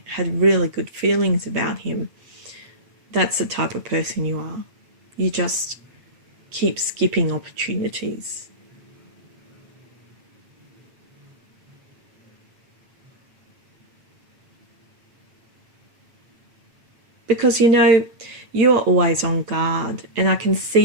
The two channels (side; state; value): left; late; 8.3 ms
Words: had really good feelings about him. That's the type of person you are. You just keep skipping opportunities. Because, you know, you are always on guard, and I can